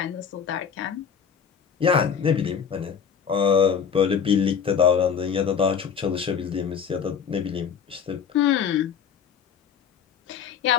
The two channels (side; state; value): right; quieter; 7.2 dB